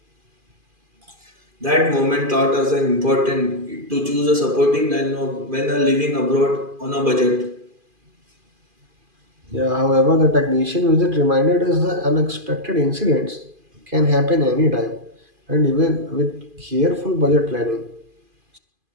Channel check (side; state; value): left; late; 2.5 ms